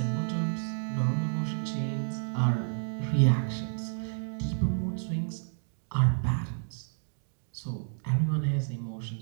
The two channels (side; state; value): left; silent; digital silence